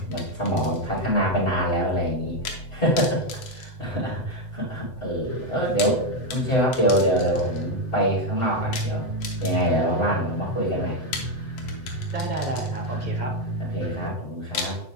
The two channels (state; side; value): late; right; 7.9 ms